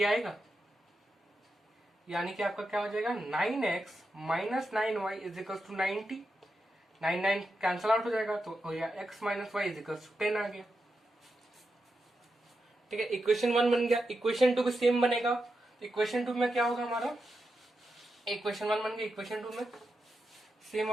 आएगा, यानी कि आपका क्या हो जाएगा 9x minus 9y is equal to 90, 9 cancel out हो जाएगा, तो हो गया x minus Y is equal to 10 आ गया, ठीक है। इक्वेशन 1 बन गया। इक्वेशन 2 भी सेम बनेगा। इक्वेशन 2 में क्या होगा हमारा, इक्वेशन 1 बन गया, इक्वेशन 2 में सेम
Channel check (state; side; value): normal; both; correlation 0.87